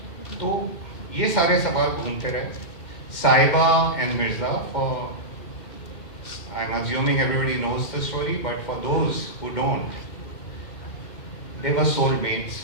तो ये सारे सवाल घूमते रहे. Sahiba and Mirza, for I'm assuming everybody knows the story, but for those who don't, they were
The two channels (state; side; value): late; right; 2.1 ms